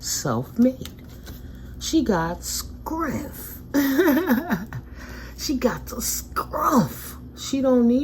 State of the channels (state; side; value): identical; both; correlation 1.00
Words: She got scruff. She got the scruff. She don't